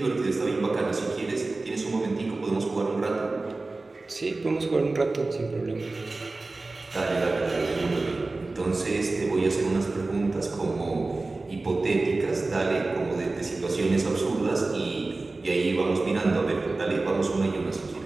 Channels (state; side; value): quieter; left; 3.3 dB